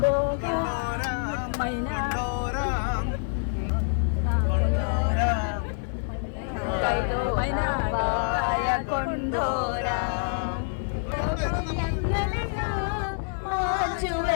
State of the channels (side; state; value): right; silent; 58 dB below the other